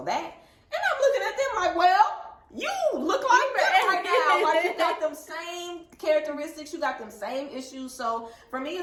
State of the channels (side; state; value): both; identical; correlation 1.00